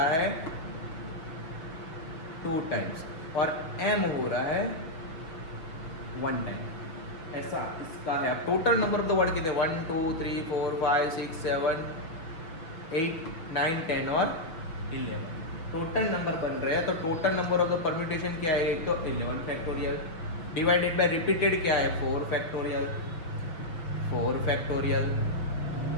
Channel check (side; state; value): right; late; 6.1 ms